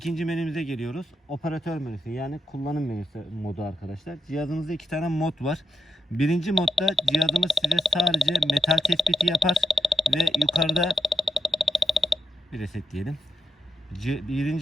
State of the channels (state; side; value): normal; both; correlation 0.84